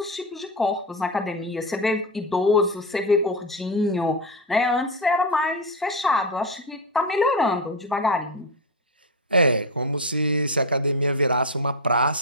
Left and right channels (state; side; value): normal; both; correlation 0.12